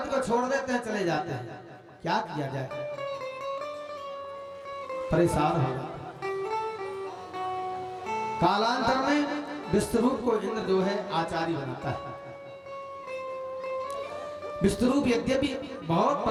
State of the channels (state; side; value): identical; both; correlation 1.00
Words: को छोड़ देते हैं, चले जाते हैं। क्या किया जाए, परेशान हो जाता। कालांतर में विष्णुरूप को इंद्र जो है आचार्य बनाता है। विष्णुरूप यद्यपि बहुत